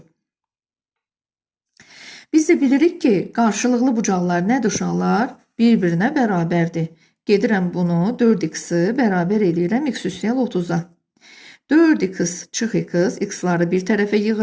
Biz də bilirik ki, qarşılıqlı bucaqlar nədir uşaqlar? Bir-birinə bərabərdir. Gedirəm bunu 4x-i bərabər eləyirəm x üstəgəl 30'a. 4x çıx x, x-ları bir tərəfə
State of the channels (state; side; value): identical; both; correlation 1.00